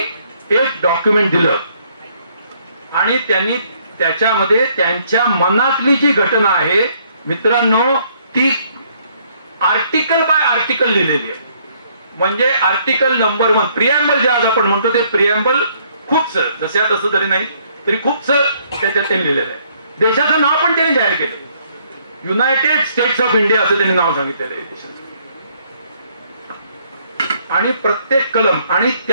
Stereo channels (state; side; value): inverted; both; correlation -0.66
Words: एक डॉक्युमेंट दिलं आणि त्यांनी त्याच्यामध्ये त्यांच्या मनातली जी घटना आहे मित्रांनो ती आर्टिकल बाय आर्टिकल लिहिलेली आहे. म्हणजे आर्टिकल नंबर 1 प्रिएम्बल जे आज आपण म्हणतो ते प्रिएम्बल खूपसं जसं तसं जरी नाही तरी खूपसं त्याच्यात त्यांनी लिहिलेलं आहे. देशाचं नाव पण त्यांनी जाहीर केलं, युनायटेड स्टेट्स ऑफ इंडिया असं त्यांनी नाव सांगितलेलं आहे देशाचं. आणि प्रत्येक कलम, आणि